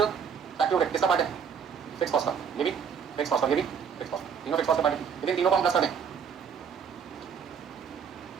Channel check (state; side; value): quieter; left; 7.0 dB